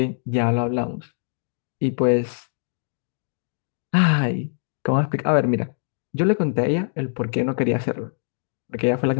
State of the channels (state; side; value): silent; right; digital silence